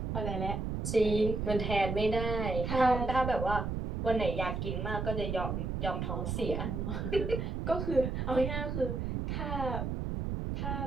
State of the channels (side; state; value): right; noise; rumble, 2 dB below the sound